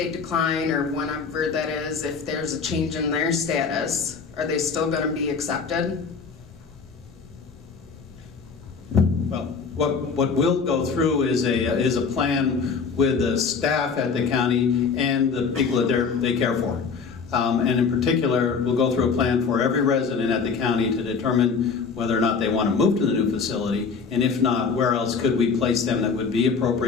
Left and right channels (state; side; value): quieter; right; 5.4 dB